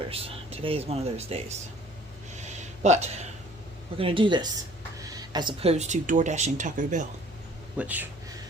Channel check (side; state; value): both; normal; correlation 0.53